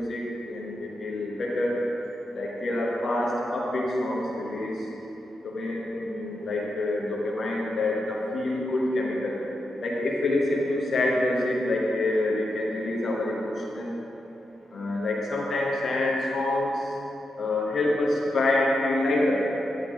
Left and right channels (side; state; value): both; normal; correlation 0.86